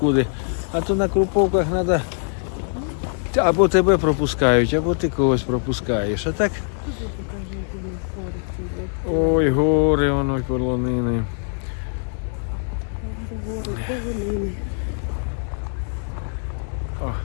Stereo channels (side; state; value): right; silent; digital silence